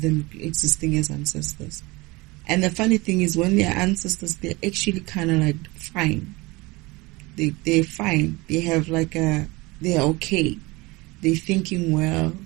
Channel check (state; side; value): quieter; left; 23.4 dB